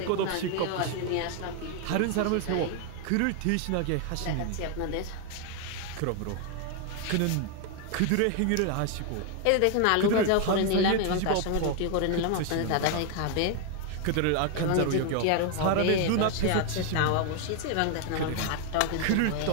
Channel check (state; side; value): different; both; correlation 0.00